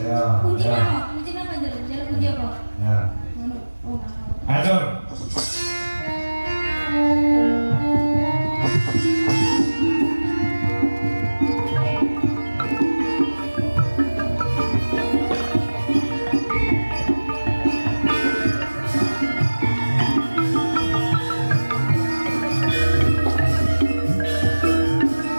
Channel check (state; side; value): inverted; both; correlation -1.00